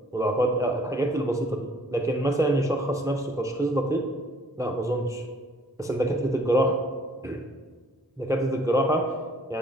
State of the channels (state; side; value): normal; both; correlation 0.58